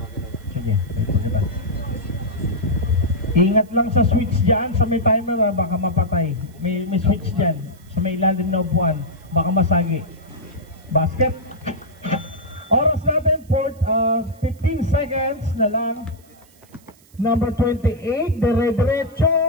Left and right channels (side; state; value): right; noise; hiss, 29 dB below the sound